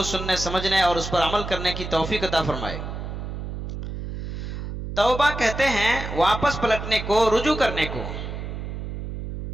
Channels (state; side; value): noise; right; hum, 6 dB below the sound